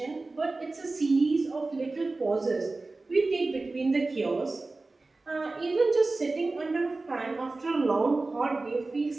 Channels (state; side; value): quieter; left; 3.4 dB